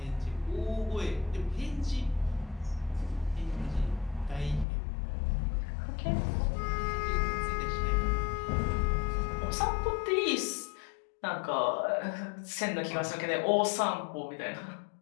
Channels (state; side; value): drops out; right; at 4.7 s